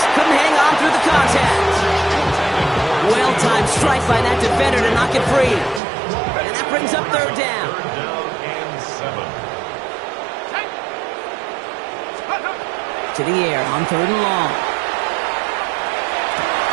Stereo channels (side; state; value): left; drops out; at 5.8 s